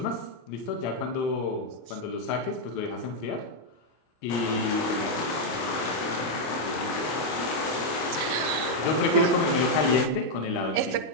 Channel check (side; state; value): right; late; 26 ms